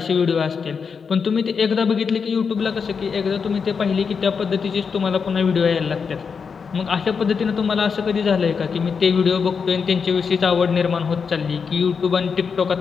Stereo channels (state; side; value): quieter; right; 5.8 dB